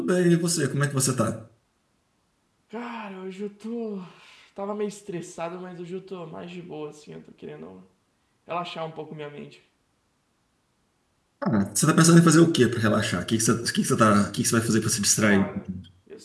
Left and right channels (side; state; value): both; identical; correlation 1.00